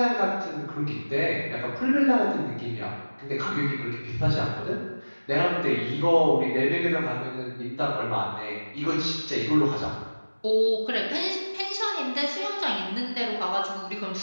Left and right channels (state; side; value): inverted; both; correlation -1.00